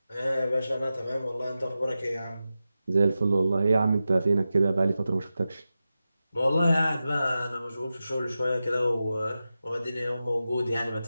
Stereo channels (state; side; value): inverted; both; correlation -0.92